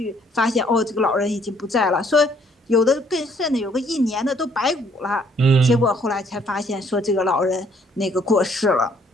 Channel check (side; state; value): both; normal; correlation 0.64